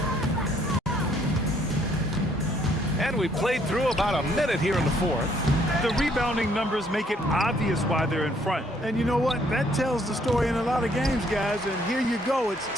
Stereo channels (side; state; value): both; normal; correlation 0.66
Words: And we played through about a minute here in the 4th. The rebounding numbers make it obvious why they're in front. And you know what? That tells the story in a lot of games, guys. And here you go. It's